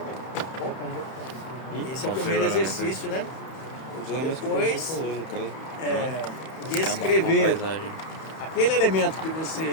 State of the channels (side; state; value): right; late; 31 ms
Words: Esse é o primeiro exercício, né? Depois, descrever aquele elemento que